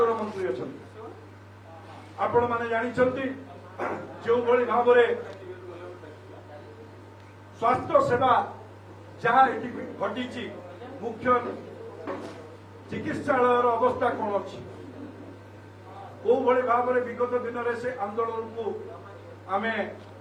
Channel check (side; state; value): both; identical; correlation 1.00